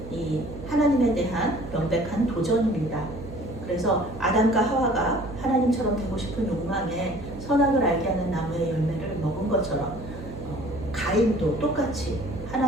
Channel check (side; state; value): right; noise; hum, 14 dB below the sound